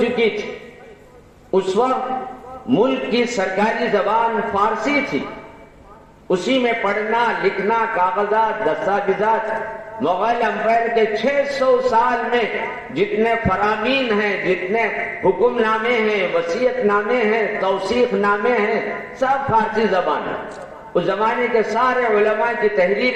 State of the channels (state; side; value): identical; both; correlation 1.00